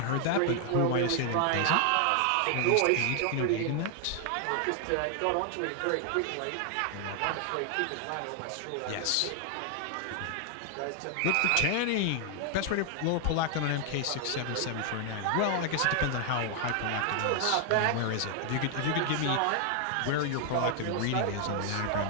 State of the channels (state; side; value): different; both; correlation 0.00